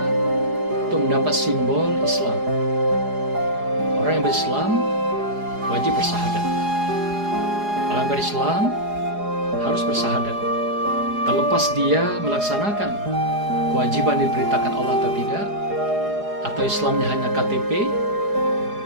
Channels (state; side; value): late; left; 4.8 ms